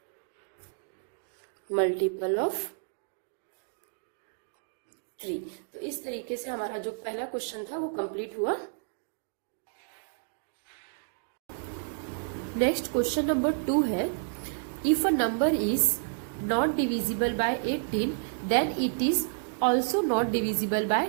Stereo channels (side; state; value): left; silent; digital silence